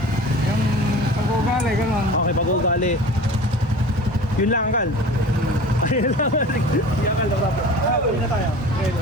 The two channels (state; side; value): normal; both; correlation 0.39